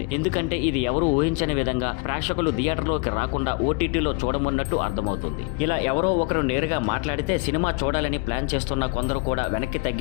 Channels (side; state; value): right; quieter; 27.7 dB